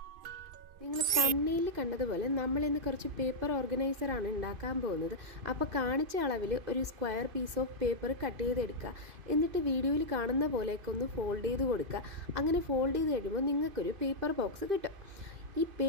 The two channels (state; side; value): late; left; 2.5 ms